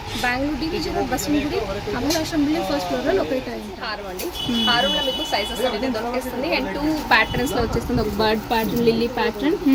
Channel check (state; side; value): identical; both; correlation 1.00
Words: Bengaluru division Basavanagudi Amalashramam building first floor లో లొకేట్ అయ్యింది. హారం అండి, హారంలో మీకు సైజెస్ అనేది దొరికేస్తుంది అండ్ 2 ప్యాటర్న్స్ లో వచ్చేస్తుంది. ఒక bird pattern, lily pattern